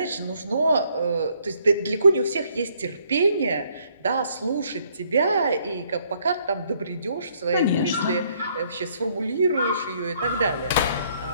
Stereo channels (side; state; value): both; inverted; correlation -0.67